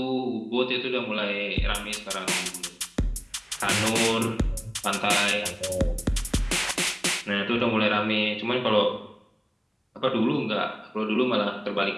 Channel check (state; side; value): identical; both; correlation 1.00